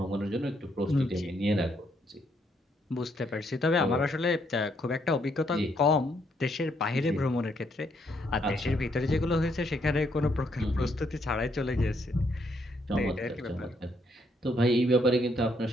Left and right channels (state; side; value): normal; both; correlation 0.73